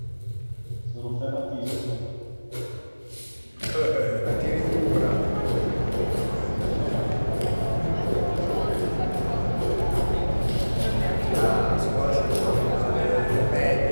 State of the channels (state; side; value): inverted; both; correlation -1.00